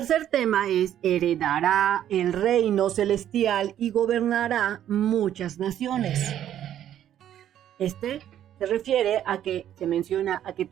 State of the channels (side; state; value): left; quieter; 11.0 dB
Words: tema es: heredará el reino celestial y gobernará muchas naciones. Este se refiere a que se menciona a que